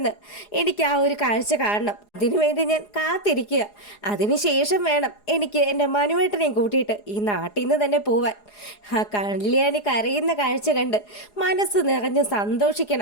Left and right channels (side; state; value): right; late; 4.8 ms